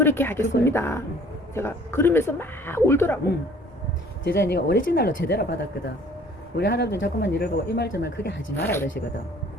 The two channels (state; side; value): normal; both; correlation 0.53